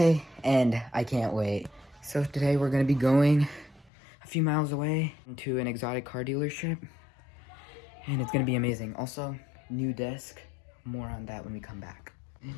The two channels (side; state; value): right; drops out; at 3.9 s